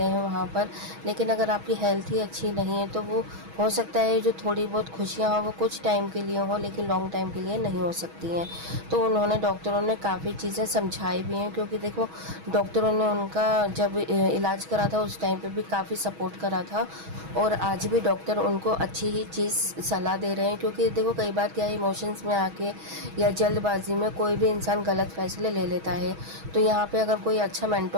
हैं वहाँ पर। लेकिन अगर आपकी हेल्थ ही अच्छी नहीं है तो वो हो सकता है जो थोड़ी बहुत खुशियाँ हों वो कुछ टाइम के लिए हों, लेकिन लॉन्ग टाइम के लिए नहीं हो सकती हैं। तो उन्होंने डॉक्टरों ने काफ़ी चीज़ें समझाई भी हैं, क्योंकि देखो डॉक्टरों ने उनका जब इलाज करा था उस टाइम पे भी काफ़ी सपोर्ट करा था, और आज भी डॉक्टर उनको अच्छी ही चीज़ सलाह दे रहे हैं। क्योंकि देखो कई बार क्या है, इमोशंस में आके या जल्दबाजी में कोई भी इंसान गलत फैसले ले लेता है। तो यहाँ पे अगर कोई अच्छा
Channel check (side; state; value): left; late; 6.2 ms